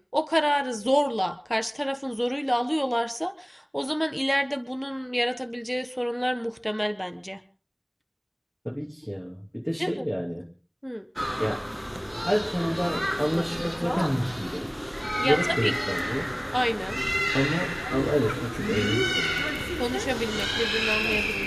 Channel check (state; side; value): identical; both; correlation 1.00